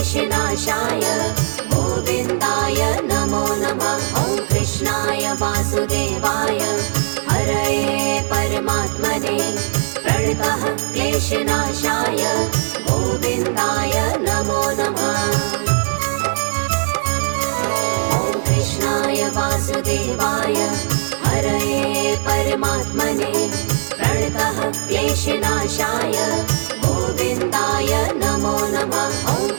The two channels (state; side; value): silent; left; digital silence